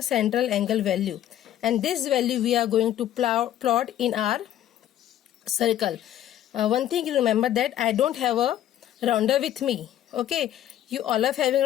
central angle value. And this value we are going to plot in our circle. One thing you remember, that I don't have a rounder with me. Okay, you all are having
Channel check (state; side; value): quieter; right; 11.8 dB